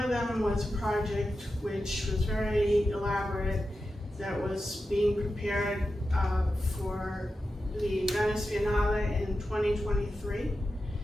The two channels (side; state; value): both; normal; correlation 0.91